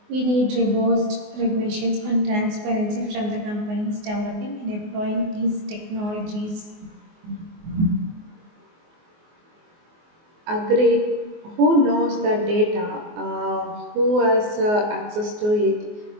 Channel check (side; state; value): left; late; 24 ms